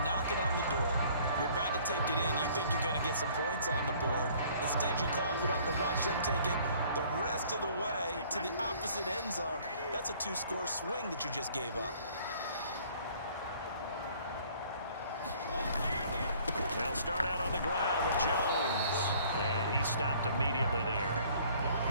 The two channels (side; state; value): both; inverted; correlation -0.56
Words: knocking on the door. You're about to take it in. You think you're going to get some points on the board. Instead, you cough it up and watch them take it the rest of the way to the opposite end zone. That's a 2-score swing that you just gave up. They'll start out on the ground with Jones. And he stopped immediately there.